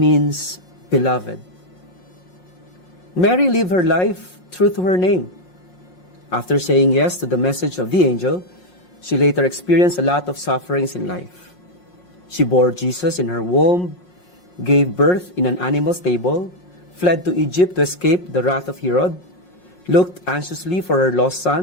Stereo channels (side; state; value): right; late; 5.5 ms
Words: beloved. Mary lived her life true to her name. After saying yes to the message of the angel, she later experienced a lot of sufferings in life. She bore Jesus in her womb, gave birth in an animal stable, fled to Egypt to escape the wrath of Herod, looked anxiously for her lost